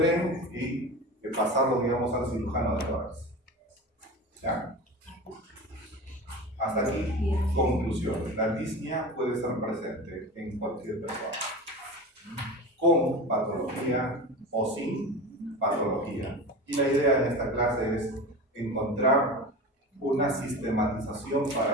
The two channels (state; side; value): normal; both; correlation 0.30